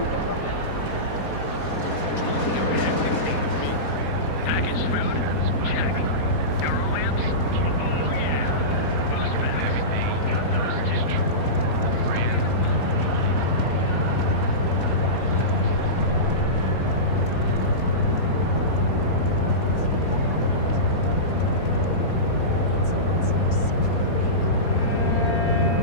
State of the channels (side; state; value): right; late; 4.2 ms